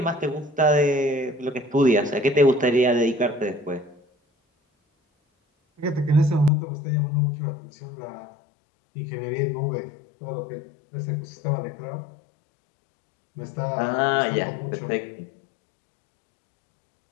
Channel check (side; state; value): right; drops out; at 6.5 s